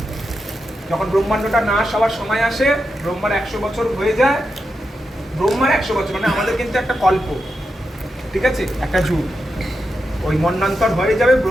যখন ব্রহ্মাণ্ডটা নাশ হওয়ার সময় আসে, ব্রহ্মার 100 বছর হয়ে যায়। ব্রহ্মার 100 বছর মানে আমাদের কিন্তু একটা কল্প, ঠিক আছে, একটা যুগ। ওই মন্বন্তর হয়ে যাবে,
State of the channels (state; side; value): normal; both; correlation 0.87